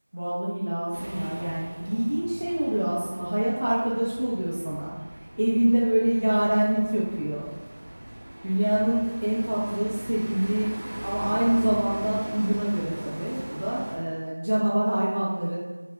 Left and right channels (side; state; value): both; inverted; correlation -1.00